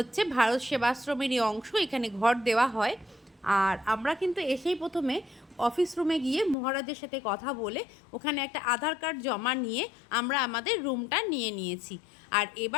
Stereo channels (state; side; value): drops out; right; at 6.6 s